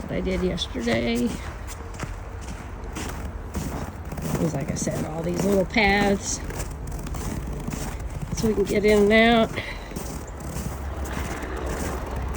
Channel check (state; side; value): identical; both; correlation 1.00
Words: what I did yesterday was, like I said, all these little paths so we can get in and out.